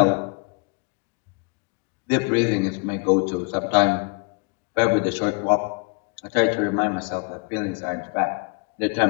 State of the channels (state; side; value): quieter; right; 34.0 dB